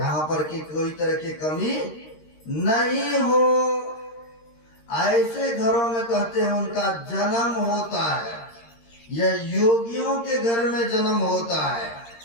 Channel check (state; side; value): late; right; 13 ms